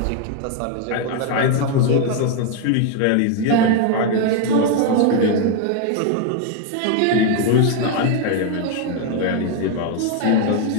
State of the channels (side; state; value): both; different; correlation 0.01